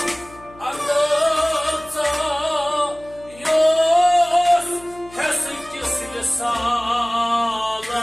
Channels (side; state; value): left; noise; hum, 22 dB below the sound